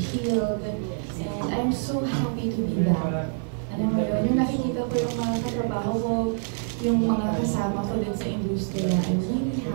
And I'm so happy to be back. Ano ba yun? Yung nakikita ko yung mga katrabaho ko, yung mga kasama ko din sa industriya, I'm really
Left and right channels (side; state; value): left; silent; digital silence